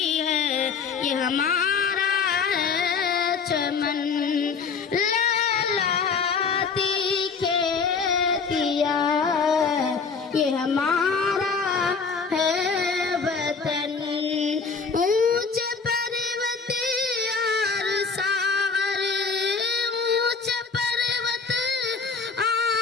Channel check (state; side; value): quieter; right; 5.2 dB